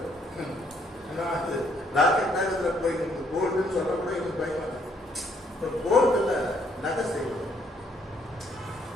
ஏன்னா அது ராக்கெட் நேரத்தில் போயிருக்கு. கோல்டுன்னு சொல்ல கூட எனக்கு பயமா இருக்கு. இப்போ கோல்டுல நகை செய்வோம்.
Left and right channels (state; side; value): normal; both; correlation 0.68